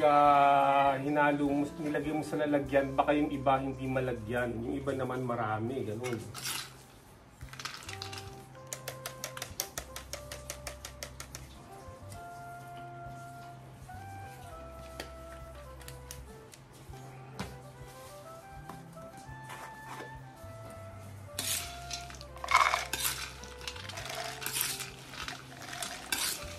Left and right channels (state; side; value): identical; both; correlation 1.00